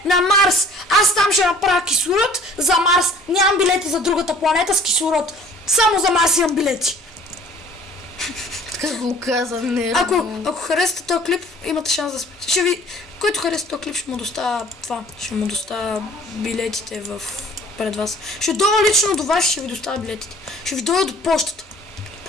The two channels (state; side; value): normal; both; correlation 0.52